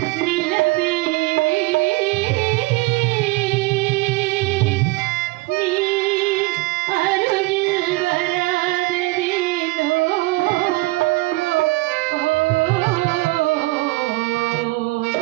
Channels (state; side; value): quieter; left; 22.2 dB